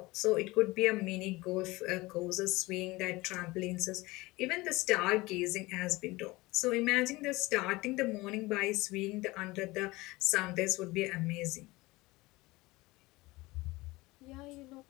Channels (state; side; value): quieter; right; 21.3 dB